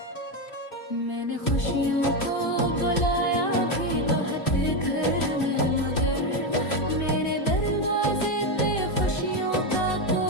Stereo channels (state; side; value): late; right; 2.8 ms